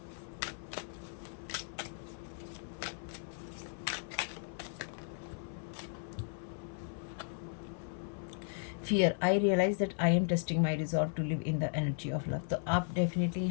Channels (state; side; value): silent; right; 54 dB below the other